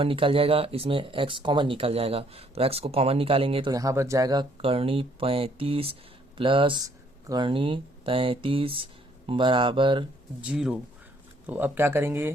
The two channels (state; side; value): normal; both; correlation 0.64